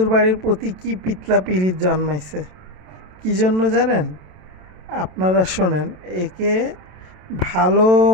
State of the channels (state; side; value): late; left; 27 ms